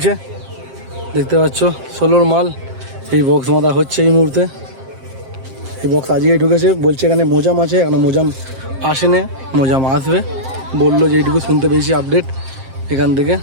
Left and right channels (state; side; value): late; left; 7.6 ms